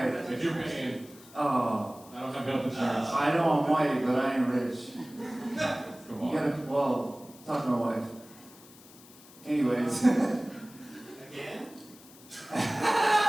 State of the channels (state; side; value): noise; left; hiss, 22 dB below the sound